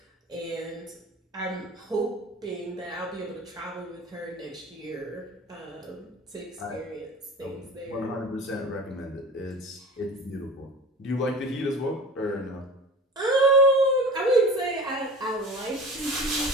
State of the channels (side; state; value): both; normal; correlation 0.38